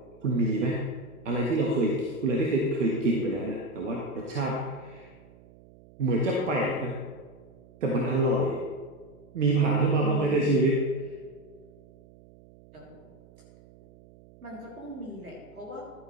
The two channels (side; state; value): right; noise; hum, 24 dB below the sound